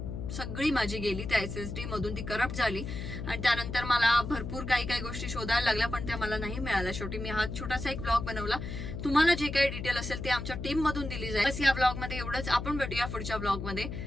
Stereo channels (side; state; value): left; noise; hum, 6 dB below the sound